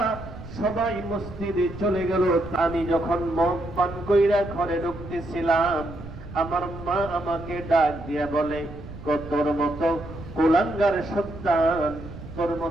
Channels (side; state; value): right; noise; rumble, 13 dB below the sound